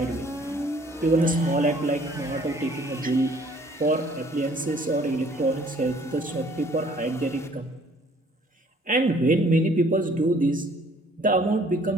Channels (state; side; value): normal; both; correlation 0.58